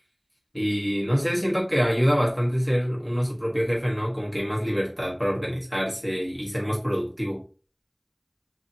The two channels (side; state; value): both; identical; correlation 1.00